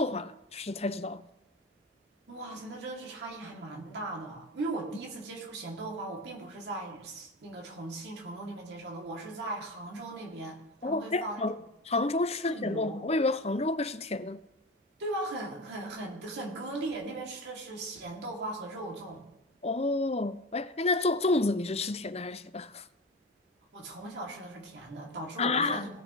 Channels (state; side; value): normal; both; correlation 0.27